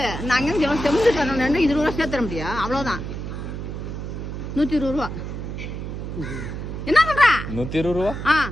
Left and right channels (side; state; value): right; noise; hum, 6 dB below the sound